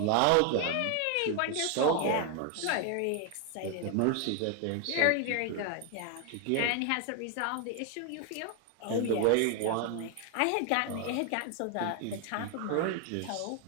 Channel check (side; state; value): both; different; correlation 0.01